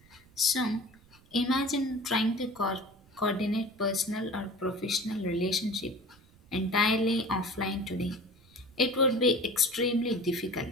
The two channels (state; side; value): noise; right; rumble, 27 dB below the sound